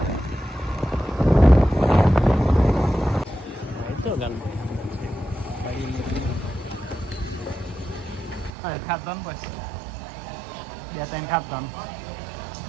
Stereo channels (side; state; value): left; drops out; at 8.6 s